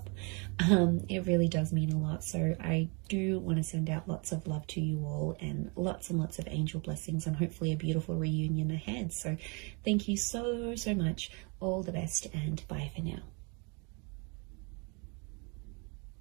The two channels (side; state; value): left; quieter; 32.5 dB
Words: It really does mean a lot. So I do want to send out lots of love to you all and lots of angel blessings, and hopefully a beautiful reunion ahead. So thank you so much. All the best, and bye for now.